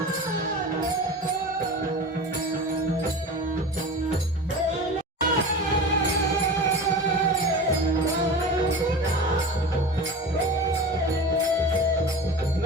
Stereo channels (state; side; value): normal; both; correlation 0.32